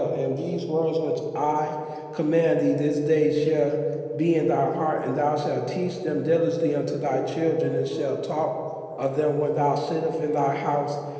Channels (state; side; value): identical; both; correlation 1.00